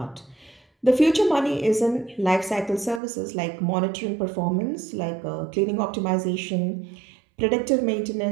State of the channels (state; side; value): drops out; left; at 3.0 s